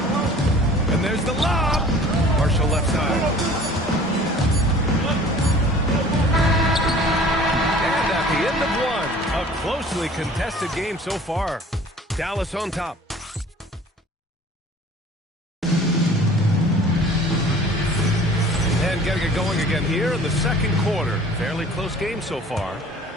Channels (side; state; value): both; normal; correlation 0.48